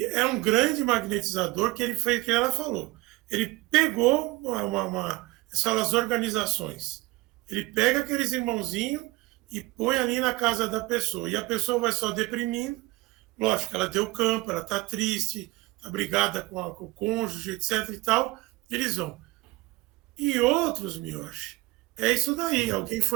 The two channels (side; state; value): left; quieter; 20.9 dB